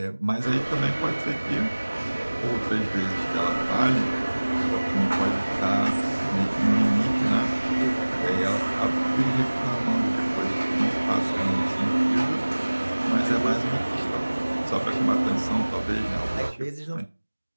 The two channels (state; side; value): inverted; both; correlation -1.00